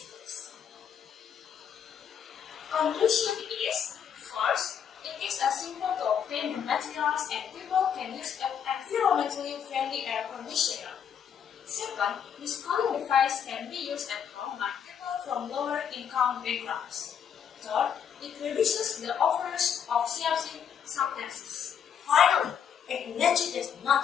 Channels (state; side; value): quieter; right; 8.0 dB